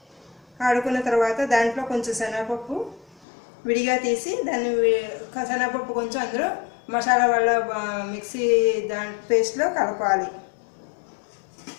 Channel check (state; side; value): drops out; right; at 3.2 s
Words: ఆడుకున్న తర్వాత దాంట్లో కొంచెం శనగపప్పు విడిగా తీసి దాన్ని శనగపప్పు కొంచెం అందులో మసాలా వల్ల మిక్సీ పేస్ట్లో కలపాలి.